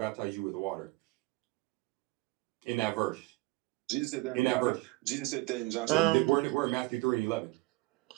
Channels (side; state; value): left; quieter; 21.8 dB